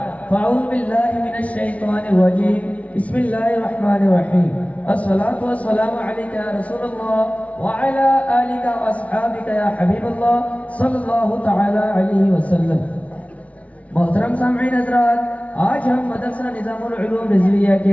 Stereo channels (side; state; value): right; late; 0.066 ms